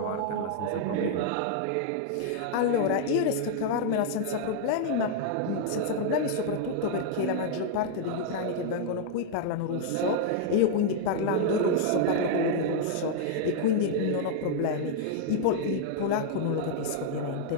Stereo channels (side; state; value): both; different; correlation 0.00